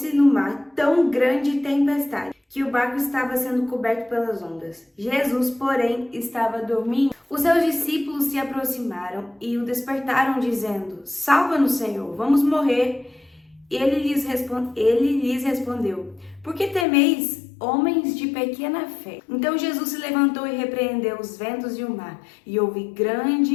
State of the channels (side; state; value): right; drops out; at 16.9 s